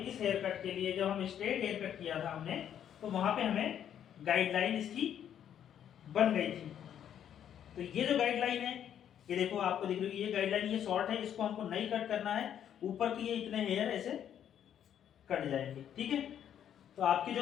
हेयर कट के लिए, जब हम स्ट्रेट हेयर कट किया था हमने, तो वहां पे हमें गाइडलाइन इसकी बन गई थी। तो ये जो गाइडलाइन है, ये देखो आपको दिख रही है, ये गाइडलाइन, ये शॉर्ट है, इसको हमको नहीं कट करना है, ऊपर की ये इतने हेयर ऐसे कट जाएंगे, ठीक है। तो आपकी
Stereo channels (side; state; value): right; quieter; 9.6 dB